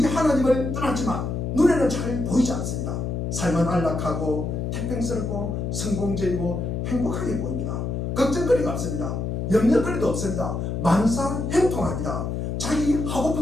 하나님을 떠났지만 눈에는 잘 보이지 않습니다. 삶은 안락하고 태평스럽고 성공적이고 행복하게 보입니다. 걱정거리가 없습니다. 염려거리도 없습니다. 만사 행통합니다. 자기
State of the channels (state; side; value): noise; left; hum, 3 dB below the sound